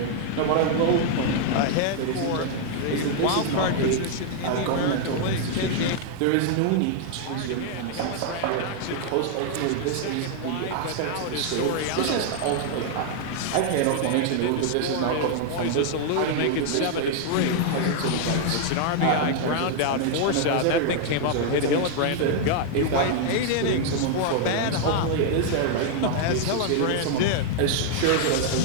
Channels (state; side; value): different; both; correlation 0.00